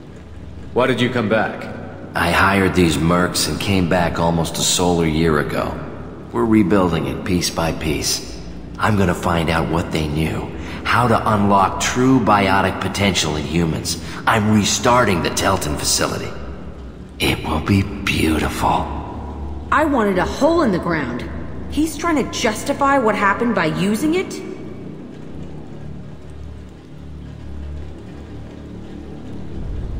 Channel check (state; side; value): identical; both; correlation 1.00